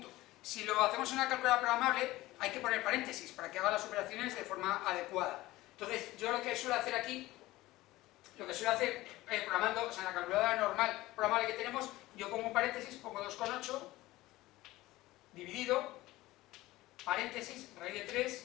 Si lo hacemos en una calculadora programable, hay que poner paréntesis para que haga las operaciones de forma adecuada. Entonces, yo lo que suelo hacer aquí, programando, o sea, en la calculadora normal programable que tenemos, yo pongo un paréntesis, pongo 2,8, dividido, paréntesis, raíz de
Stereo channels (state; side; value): quieter; right; 18.0 dB